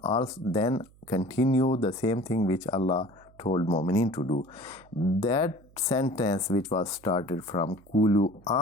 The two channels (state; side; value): noise; right; hum, 27 dB below the sound